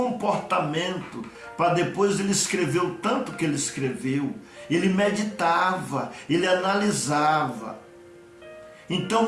para depois ele escrever o tanto que ele escreveu. Ele meditava, ele analisava. Então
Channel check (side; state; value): both; identical; correlation 1.00